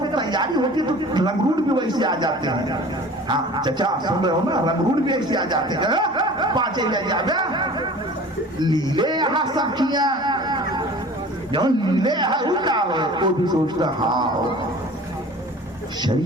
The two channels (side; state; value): both; normal; correlation 0.43